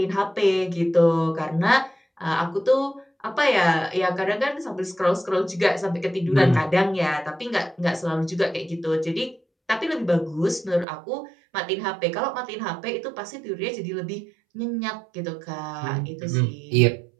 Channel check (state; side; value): drops out; left; at 10.9 s